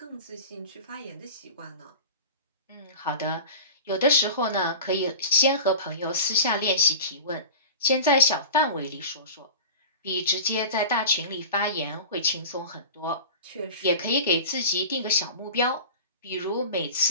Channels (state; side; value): inverted; both; correlation -0.33